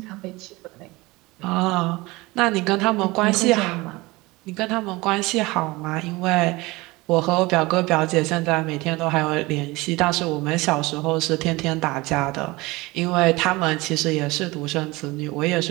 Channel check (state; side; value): quieter; left; 22.1 dB